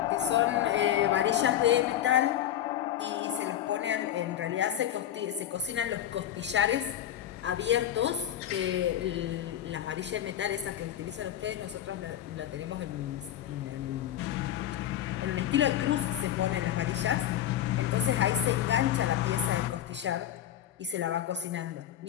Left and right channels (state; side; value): quieter; right; 11.1 dB